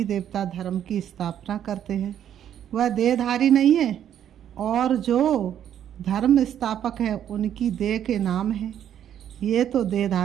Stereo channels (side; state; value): left; quieter; 10.1 dB